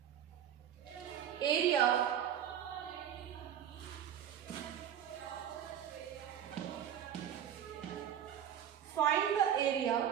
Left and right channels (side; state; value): left; quieter; 9.8 dB